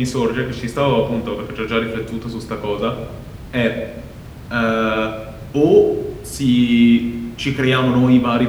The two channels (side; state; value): both; identical; correlation 1.00